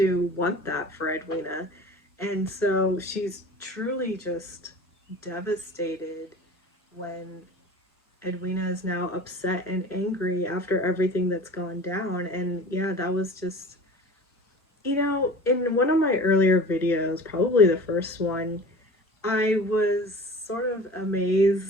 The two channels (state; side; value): normal; both; correlation 0.39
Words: want that for Edwina. And so she's truly just devastated when Edwina is now upset and angry after everything that's gone down. And yeah, that was just, in one of my earlier videos, probably the first one, I was sort of